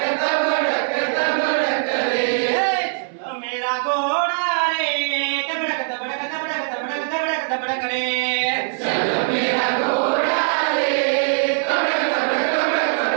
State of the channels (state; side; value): silent; left; digital silence